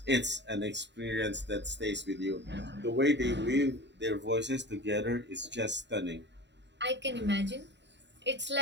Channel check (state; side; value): late; left; 0.52 ms